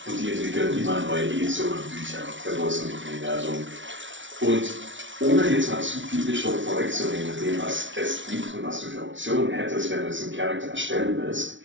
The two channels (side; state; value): left; late; 0.56 ms